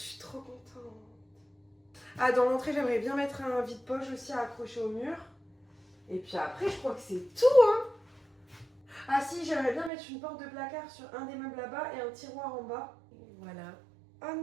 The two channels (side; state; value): left; drops out; at 9.9 s